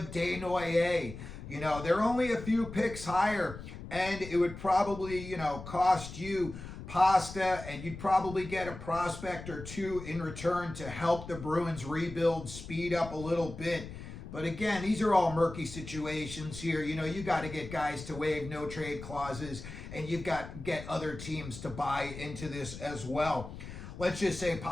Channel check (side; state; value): left; noise; rumble, 11 dB below the sound